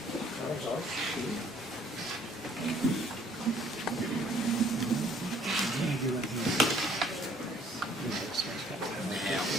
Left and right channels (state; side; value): normal; both; correlation 0.60